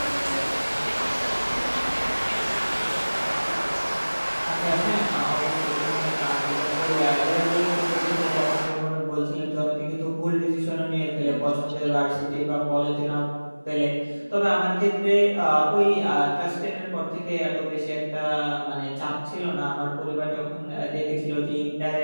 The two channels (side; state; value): both; inverted; correlation -1.00